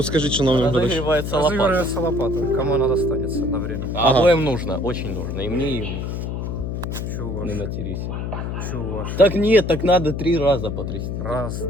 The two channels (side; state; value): left; noise; hum, 4 dB below the sound